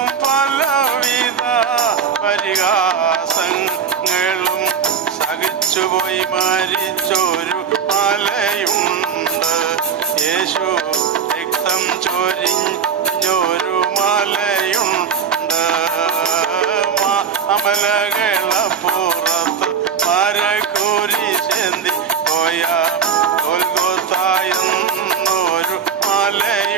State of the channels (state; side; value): quieter; left; 6.8 dB